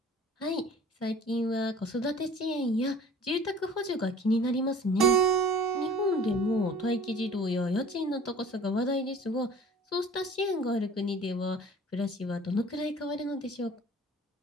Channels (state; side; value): normal; both; correlation 0.46